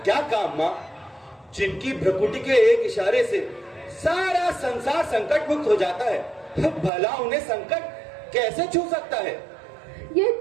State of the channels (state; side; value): drops out; left; at 6.9 s